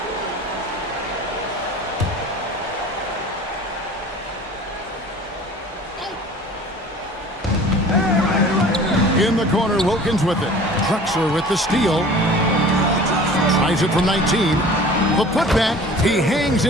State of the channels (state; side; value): normal; both; correlation 0.44